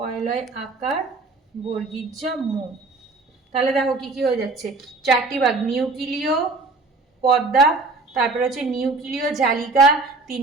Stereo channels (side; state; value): left; quieter; 3.6 dB